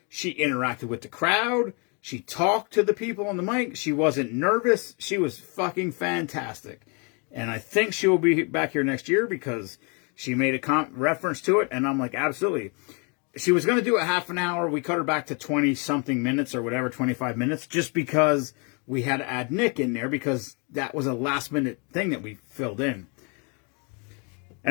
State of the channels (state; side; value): quieter; right; 34.4 dB